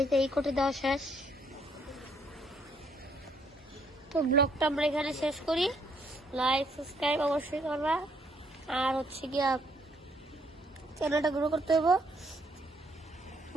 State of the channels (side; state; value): both; normal; correlation 0.69